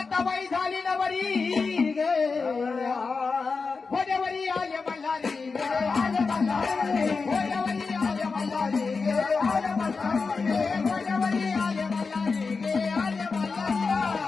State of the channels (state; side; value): quieter; right; 4.6 dB